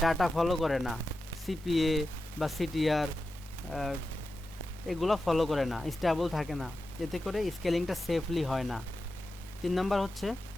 ডাটা ফলো করে না, সিপিএ বা সিটিআর এগুলো ফলো করে না, স্টেবল থাকে না, এতে করে স্কেলিংটা সেফলি হয় না। 3 নাম্বার হচ্ছে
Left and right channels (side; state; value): both; normal; correlation 0.92